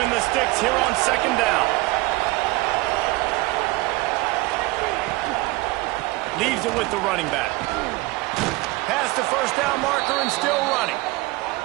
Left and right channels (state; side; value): quieter; left; 21.5 dB